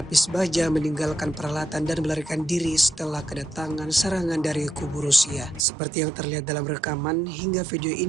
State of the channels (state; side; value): drops out; left; at 5.6 s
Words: baja meninggalkan peralatan dan melarikan diri setelah kedatangan serangan dari kubu Rusia. Seperti yang terlihat dalam rekaman, hingga video